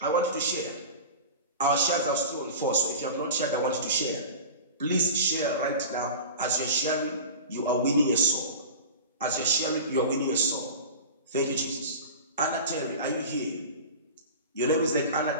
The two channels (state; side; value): inverted; both; correlation -0.33